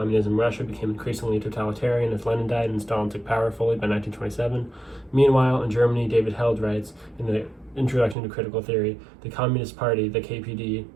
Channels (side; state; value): left; drops out; at 8.2 s